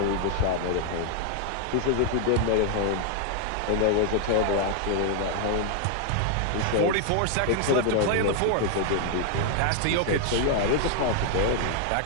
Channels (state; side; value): different; both; correlation 0.00